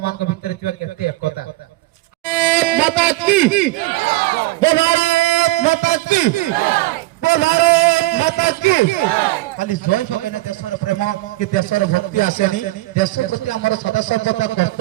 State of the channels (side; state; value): left; quieter; 19.6 dB